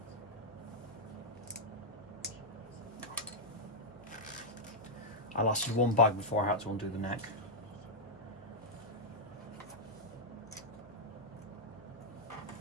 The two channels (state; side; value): noise; left; hum, 24 dB below the sound